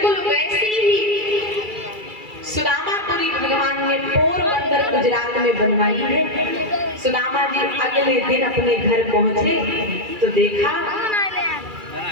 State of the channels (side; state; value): left; late; 2.3 ms